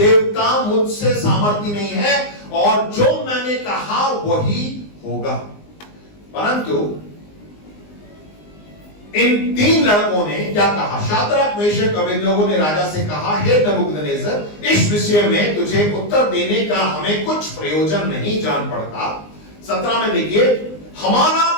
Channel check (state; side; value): late; right; 19 ms